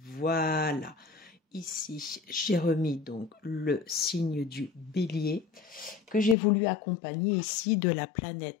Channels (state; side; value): drops out; right; at 6.4 s